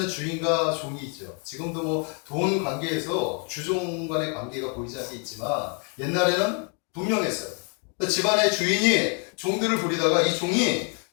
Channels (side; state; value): right; quieter; 39.4 dB